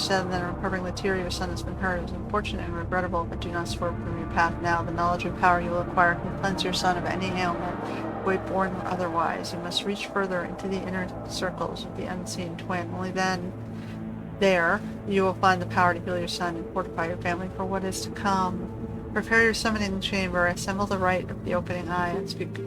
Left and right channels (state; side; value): identical; both; correlation 1.00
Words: that in recovering the tear your son has been hurt. It is unfortunate and regrettable, but do not swerve from your path now. The knowledge and power you will acquire can cleanse your son of any ailment, weight-borne or otherwise. You must reach further into the inner circles of the unseen twin. Only then, there, you will find the power to heal your son and fortify your family for what is to come. Prepare your summoning chamber, assemble the rite of the opening eye, and speak